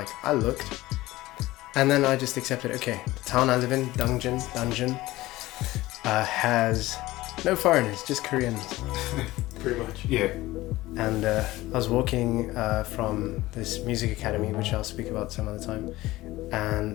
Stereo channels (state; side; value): quieter; right; 17.8 dB